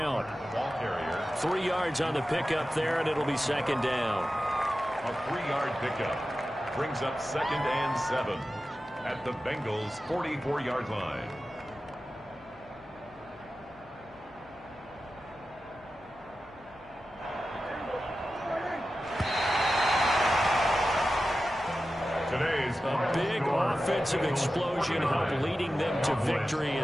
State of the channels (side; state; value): left; noise; hum, 24 dB below the sound